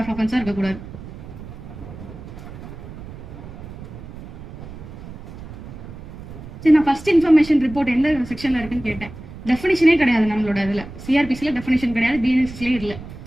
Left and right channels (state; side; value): noise; right; rumble, 13 dB below the sound